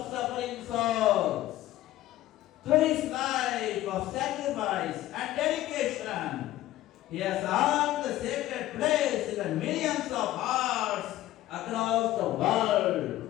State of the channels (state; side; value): quieter; right; 14.9 dB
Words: suffering souls. Through his life of sacrifice and dedication, he has earned the sacred place in the millions of hearts across the